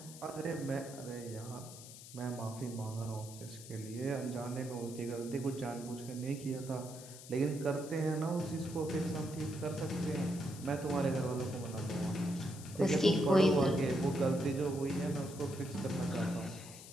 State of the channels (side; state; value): left; noise; hiss, 15 dB below the sound